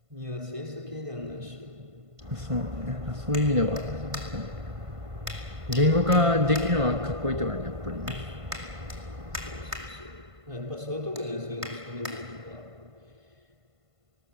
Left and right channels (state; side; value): late; left; 1.5 ms